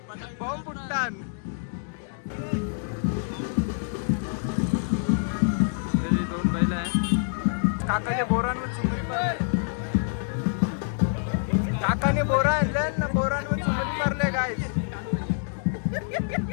बॉम्ब फुटतान. त्याची 2 बैल आहे. काकाच्या बोरांवर चुंबरी मारले. काकाने बोरा आणले ना, बोरांवर चुंबरी मारले गाय.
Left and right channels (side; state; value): right; silent; digital silence